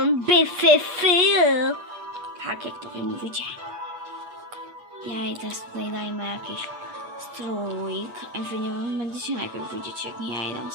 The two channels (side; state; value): left; late; 8.4 ms